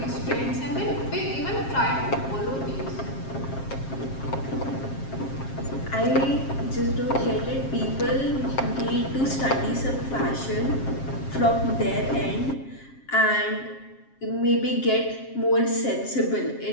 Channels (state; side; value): late; right; 7.5 ms